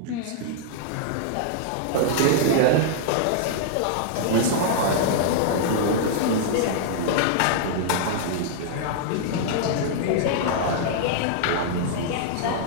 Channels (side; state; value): both; different; correlation -0.01